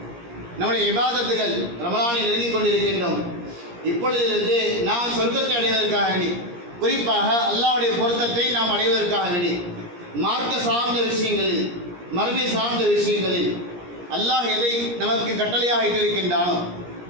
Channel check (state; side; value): late; left; 17 ms